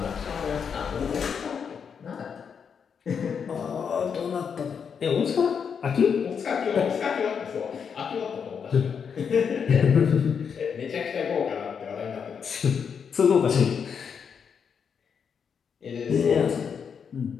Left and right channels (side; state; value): right; quieter; 6.8 dB